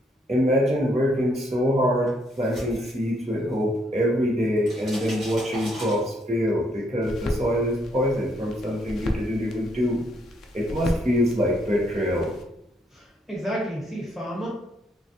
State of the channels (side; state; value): both; normal; correlation 0.72